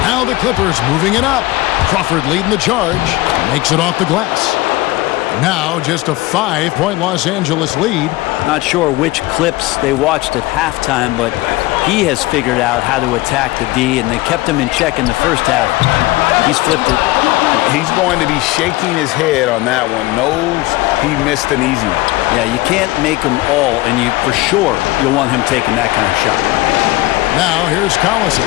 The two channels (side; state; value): right; quieter; 19.7 dB